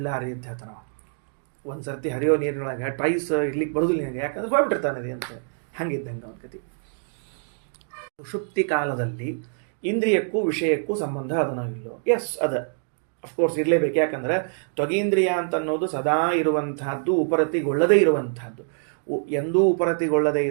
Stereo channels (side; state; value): left; silent; digital silence